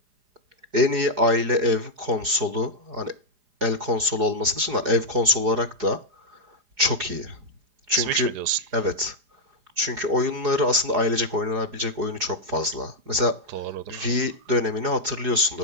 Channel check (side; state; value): left; late; 4.7 ms